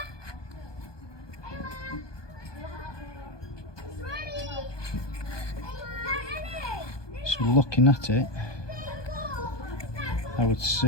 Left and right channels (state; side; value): late; right; 1.2 ms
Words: So looking at it, I would